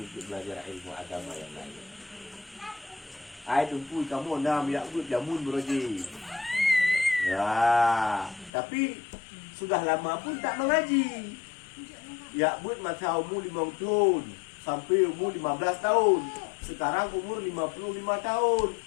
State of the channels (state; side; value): drops out; right; at 8.5 s